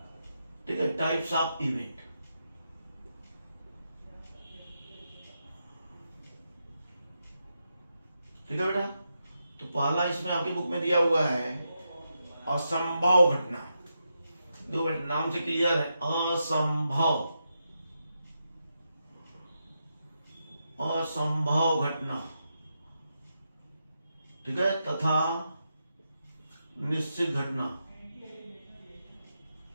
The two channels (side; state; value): both; inverted; correlation -0.86